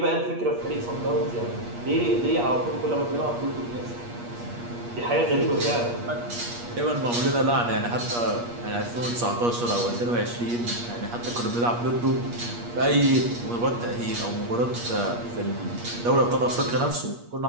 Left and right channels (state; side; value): late; left; 8.4 ms